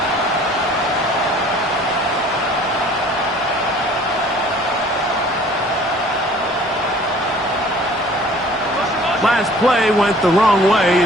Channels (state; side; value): normal; both; correlation 0.51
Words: Last play went the wrong way.